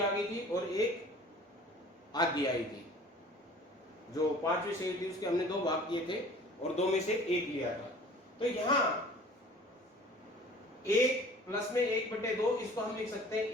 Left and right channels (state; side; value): normal; both; correlation 0.47